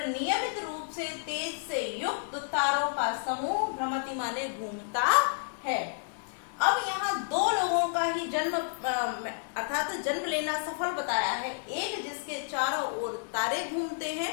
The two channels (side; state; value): right; silent; digital silence